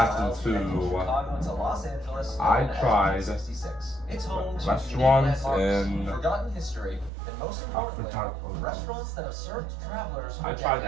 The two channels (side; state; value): left; drops out; at 7.1 s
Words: to I tried restaurants and forgotten history, and most importantly, restaurants that have served travelers. I tried